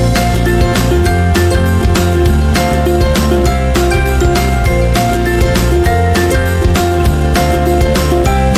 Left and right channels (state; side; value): identical; both; correlation 1.00